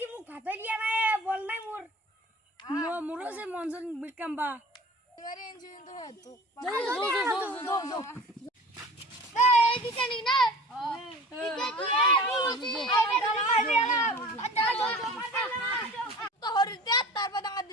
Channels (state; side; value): normal; both; correlation 0.41